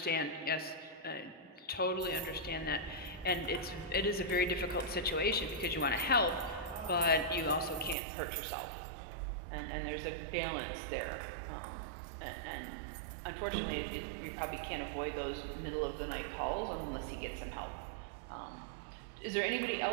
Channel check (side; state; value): left; drops out; at 8.0 s